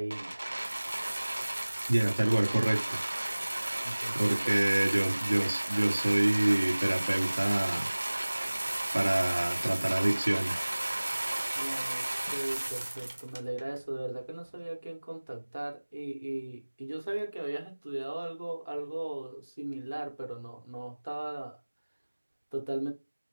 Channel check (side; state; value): both; inverted; correlation -1.00